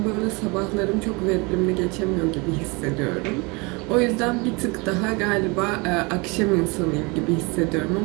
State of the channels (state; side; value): quieter; left; 27.9 dB